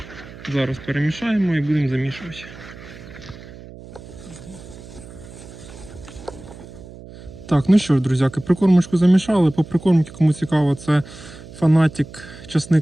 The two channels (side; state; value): right; noise; hum, 17 dB below the sound